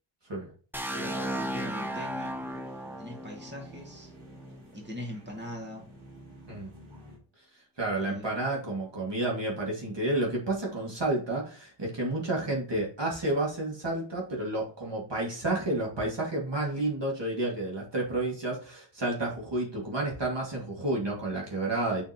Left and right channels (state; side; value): normal; both; correlation 0.05